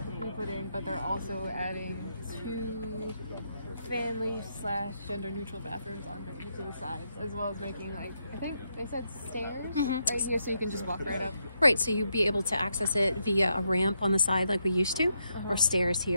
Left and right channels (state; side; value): inverted; both; correlation -0.80